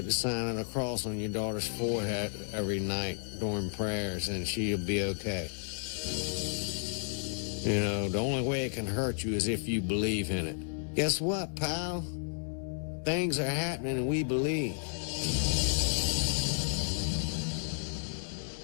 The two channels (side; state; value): right; silent; digital silence